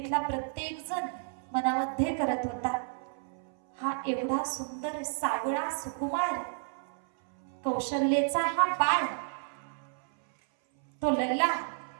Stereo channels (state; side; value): silent; left; 57 dB below the other